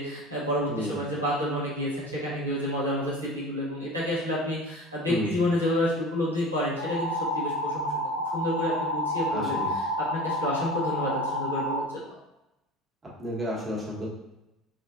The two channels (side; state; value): both; normal; correlation 0.34